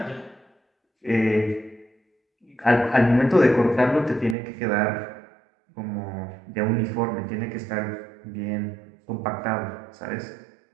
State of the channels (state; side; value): drops out; left; at 4.4 s